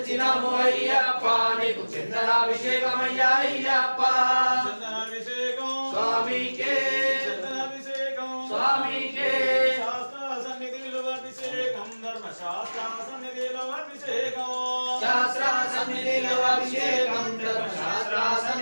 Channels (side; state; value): both; inverted; correlation -1.00